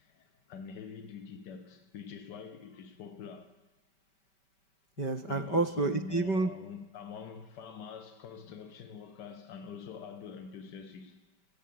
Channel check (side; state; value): right; late; 5.2 ms